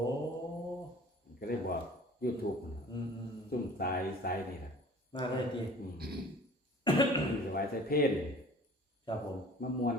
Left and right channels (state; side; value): normal; both; correlation 0.46